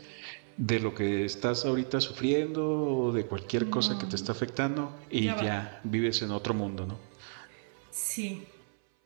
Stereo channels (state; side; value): silent; left; 56 dB below the other